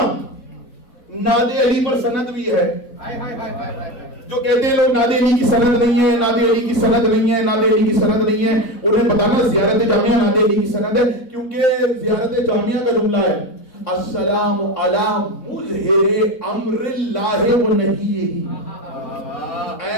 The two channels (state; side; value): late; right; 3.6 ms